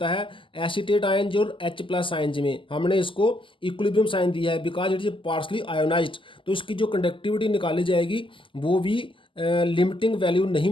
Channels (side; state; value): right; late; 0.25 ms